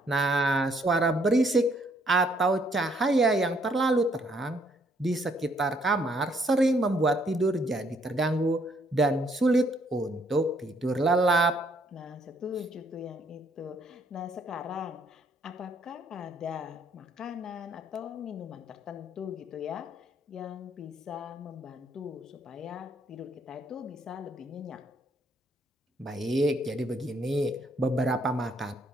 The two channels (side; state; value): both; normal; correlation 0.68